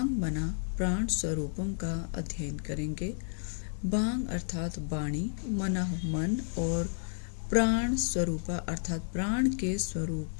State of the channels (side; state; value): right; silent; 57 dB below the other